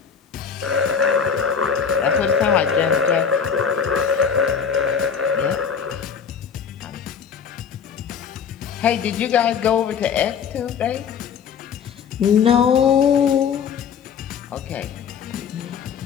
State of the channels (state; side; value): quieter; right; 7.0 dB